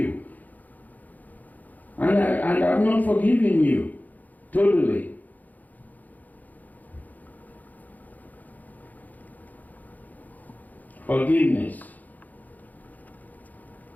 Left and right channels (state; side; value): late; right; 0.081 ms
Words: And I've not forgiven you totally. Forgiveness.